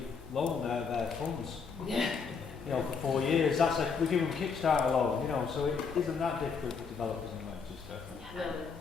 loan out of their funds. Yeah. You know, for 4 years. That's like we give them Kickstarter loan. You know, so it isn't that difficult for developers in Manchester.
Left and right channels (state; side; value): quieter; right; 5.5 dB